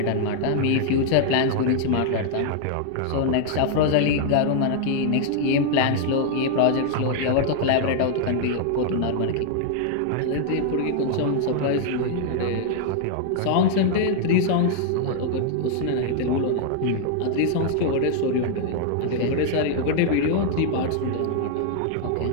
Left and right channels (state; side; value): different; both; correlation 0.00